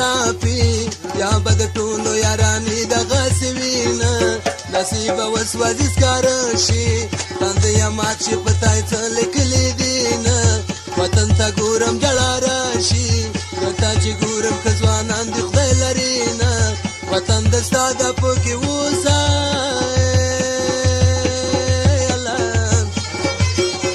یا بد ټولو یارانی دغه سوینه نصیب وسوځي سکارشي تند یا مات شي پتاي څه لیکلي دینه وطن ته ګورم جړا راشي تا چې ګورم خزوانان د خدای لري نه وطن د ساده پکې وسه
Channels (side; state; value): both; identical; correlation 1.00